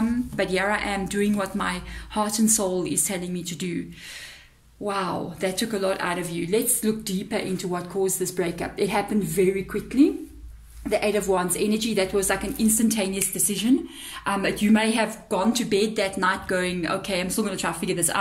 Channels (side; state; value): both; identical; correlation 1.00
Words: but here I am doing what my heart and soul is telling me to do. Wow, that took a lot out of you. Let's look deeper into what caused this breakup. It happened very quickly. The Eight of Wands energy, that was like an instantaneous decision. You may have gone to bed that night going, okay, I'm still going to try to figure this